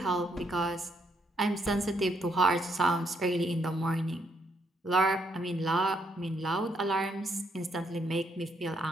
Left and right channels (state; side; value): normal; both; correlation 0.73